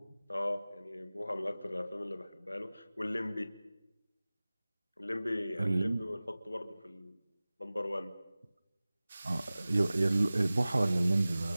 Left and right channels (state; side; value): inverted; both; correlation -0.98